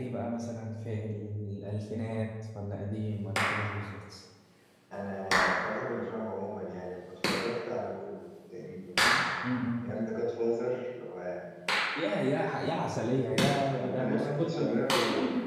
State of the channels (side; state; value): both; identical; correlation 1.00